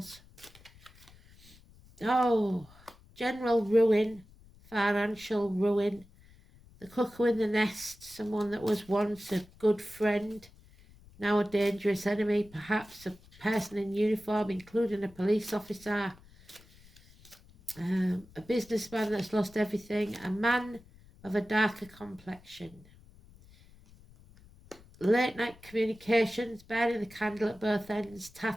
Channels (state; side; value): noise; left; rumble, 24 dB below the sound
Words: Oh, general ruin. Financial ruin. The cuckoo in the nest. Someone that was once a good friend. Now a dangerous enemy. Perhaps a person in uniform, including a police officer. A businessman that's lost everything. A man of a darker complexion. Late night communications, burning the candle at both ends,